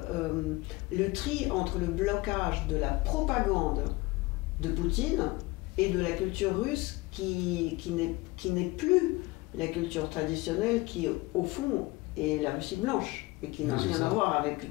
tri entre le blocage de la propagande de Poutine et de la culture russe qui n'est plus la culture traditionnelle qui, au fond, est la Russie blanche et qui n'a rien à voir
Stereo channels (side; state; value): right; quieter; 21.7 dB